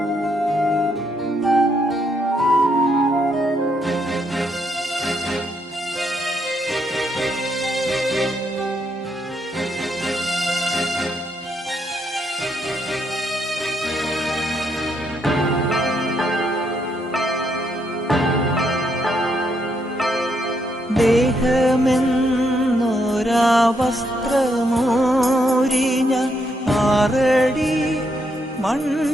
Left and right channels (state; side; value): normal; both; correlation 0.76